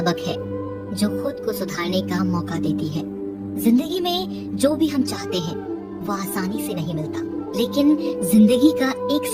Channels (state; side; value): identical; both; correlation 1.00